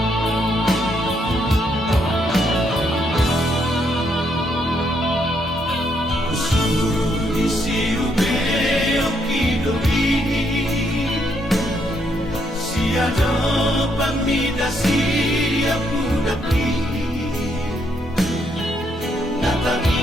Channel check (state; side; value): normal; both; correlation 0.74